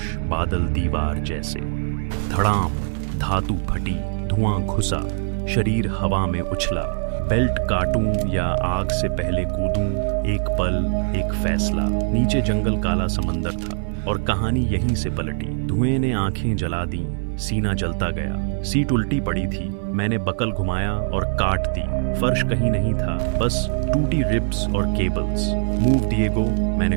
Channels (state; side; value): silent; left; 64 dB below the other